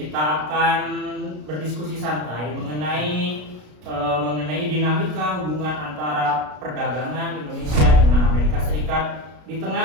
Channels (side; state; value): left; late; 33 ms